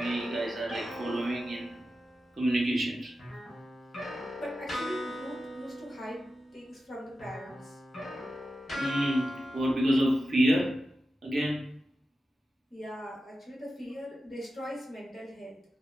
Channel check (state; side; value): normal; both; correlation 0.91